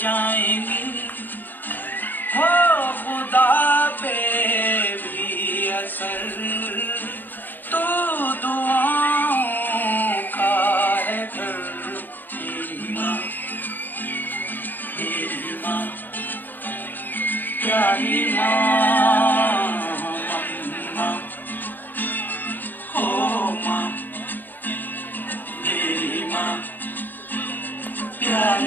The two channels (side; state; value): right; late; 0.089 ms